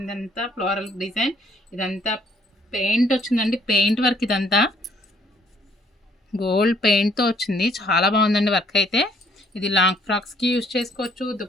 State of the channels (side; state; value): both; normal; correlation 0.64